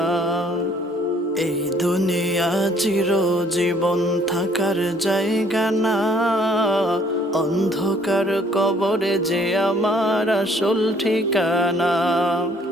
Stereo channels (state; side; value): normal; both; correlation 0.61